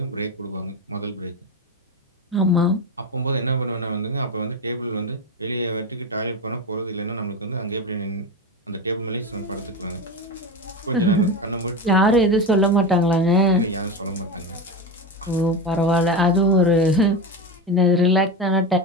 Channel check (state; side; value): normal; both; correlation 0.19